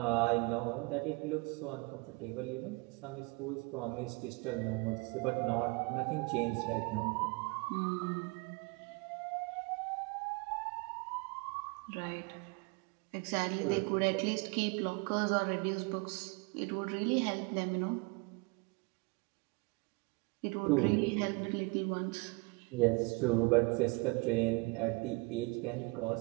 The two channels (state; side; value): quieter; left; 27.6 dB